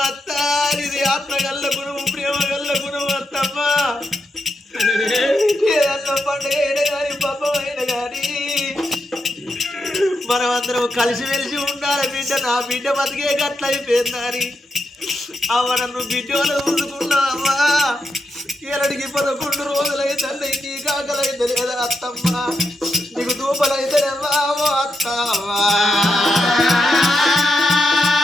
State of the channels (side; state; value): both; normal; correlation 0.84